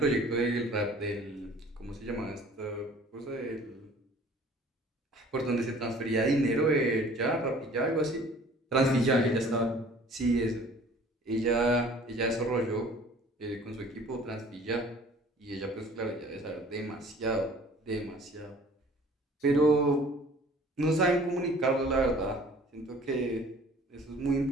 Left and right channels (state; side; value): normal; both; correlation 0.50